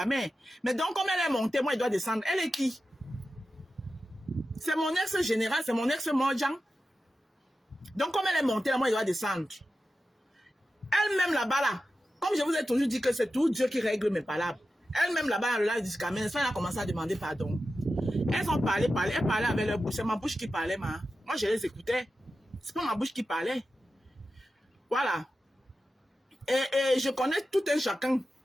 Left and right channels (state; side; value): normal; both; correlation 0.92